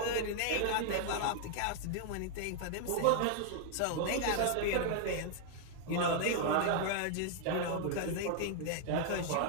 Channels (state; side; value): different; both; correlation 0.00